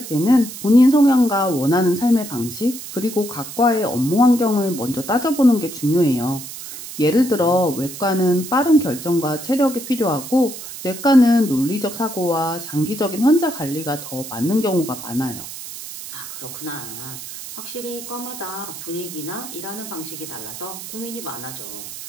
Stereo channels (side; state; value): right; noise; hiss, 11 dB below the sound